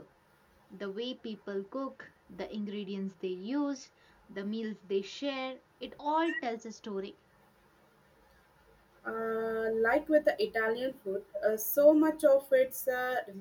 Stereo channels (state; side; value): identical; both; correlation 1.00